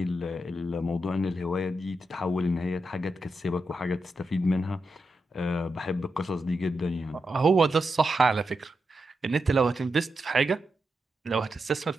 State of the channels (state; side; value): normal; both; correlation 0.86